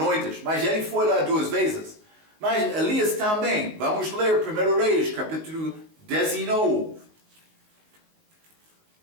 Mas ele foi lá 2 vezes. Mas Elias também. Vamos ler 1 Reis, capítulo 19.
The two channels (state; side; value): late; left; 19 ms